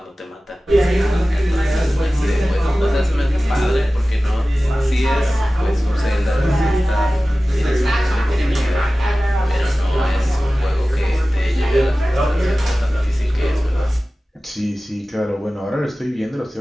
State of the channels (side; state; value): both; normal; correlation 0.96